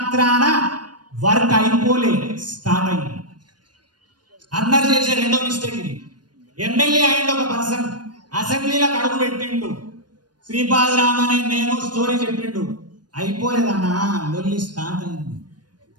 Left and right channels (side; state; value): left; late; 0.70 ms